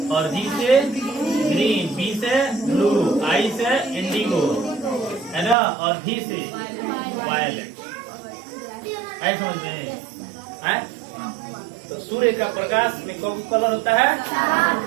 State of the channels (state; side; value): drops out; left; at 5.6 s